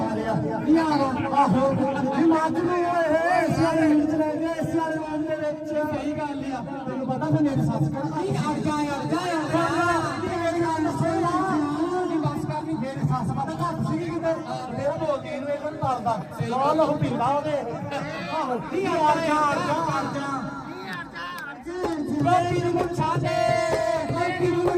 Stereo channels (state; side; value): identical; both; correlation 1.00